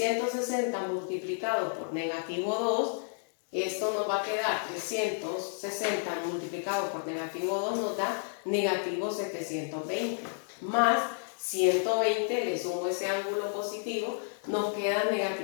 multiplicado por negativo 2. Esto nos va a quedar 360 multiplicado por negativo 2 nos da negativo 720 más 120, le sumo ese ángulo positivo, nos queda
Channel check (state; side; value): silent; right; digital silence